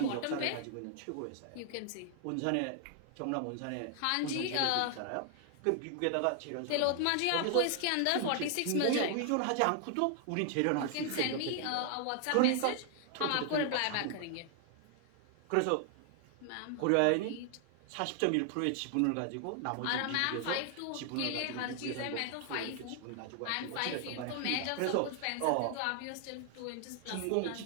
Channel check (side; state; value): both; different; correlation 0.00